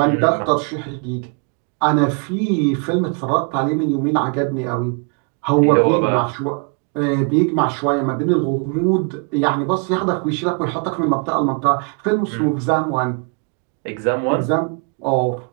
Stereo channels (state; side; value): quieter; left; 36.3 dB